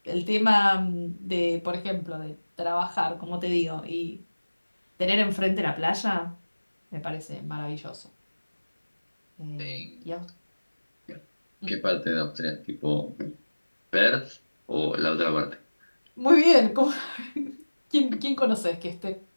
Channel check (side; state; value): both; inverted; correlation -1.00